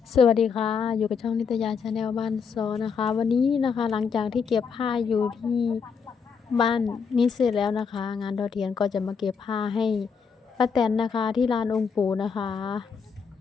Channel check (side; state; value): right; quieter; 6.1 dB